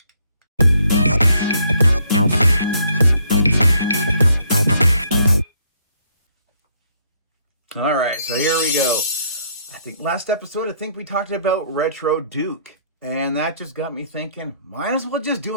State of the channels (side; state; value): both; inverted; correlation -0.68